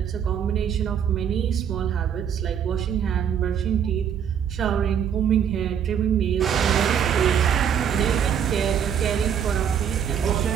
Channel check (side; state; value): left; quieter; 8.4 dB